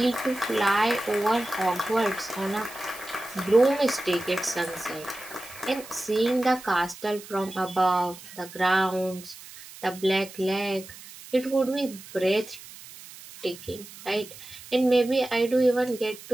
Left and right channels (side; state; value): right; noise; hiss, 17 dB below the sound